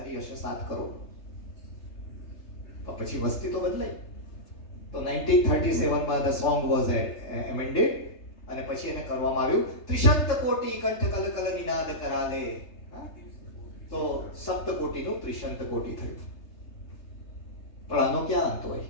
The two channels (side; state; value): right; late; 3.3 ms